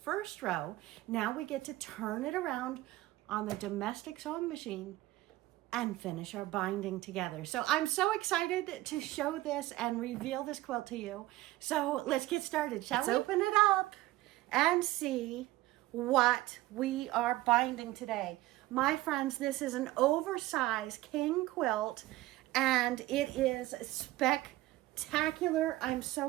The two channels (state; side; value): quieter; left; 17.4 dB